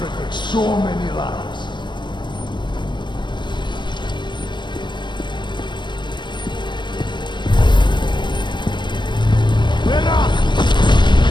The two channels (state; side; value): late; right; 0.22 ms